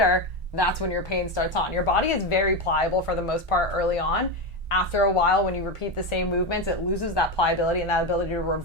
that's when your pain starts on. Your body is very pliable for the most part early on. After a while, when you repeat the same movements, it loses that pliability and that ability to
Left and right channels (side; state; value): both; normal; correlation 0.13